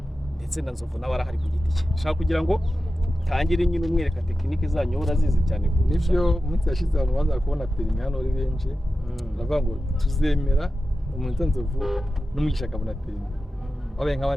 ndetse na Nzovu nawe arahari ku giti cye. Nshaka kugira ngo tangire nyine umwereka tekinike zanyu urazizi cyane. Nivyo umunsi yashize abantu baza kubona perime hano ari benshi. Baravuga ngo tuzemera umuntu Nzovu n'umugisha akabona perime. Wabaye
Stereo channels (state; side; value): normal; both; correlation 0.93